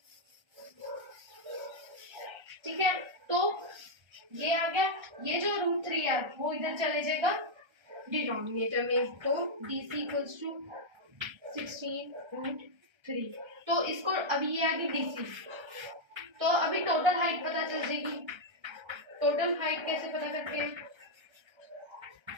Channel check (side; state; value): left; late; 1.3 ms